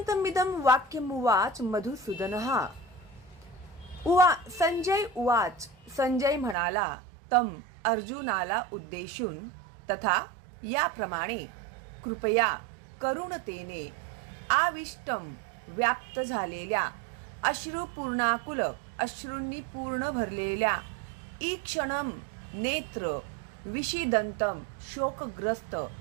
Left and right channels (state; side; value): drops out; left; at 6.6 s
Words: वाक्यमुवाच मधुसूदनः. संजय उवाच. संजय म्हणाला तम अर्जुनाला उद्देशून तथा याप्रमाणे कृपया करुणतेने आविष्टम व्याप्त झालेल्या अश्रुपूर्णाकुल अश्रूंनी पूर्ण भरलेल्या ईक्षणम नेत्र विषिदंतम शोकग्रस्त